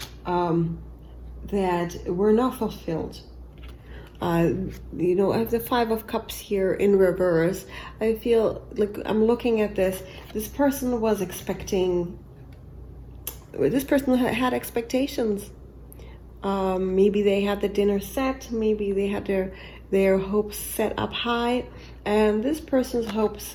that were not fulfilled. You know, I have the Five of Cups here in reverse. I feel like I'm looking at this. This person had expectations. Maybe they had the dinner set. Maybe they had their hopes set up high, and this person's hopes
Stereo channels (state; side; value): identical; both; correlation 1.00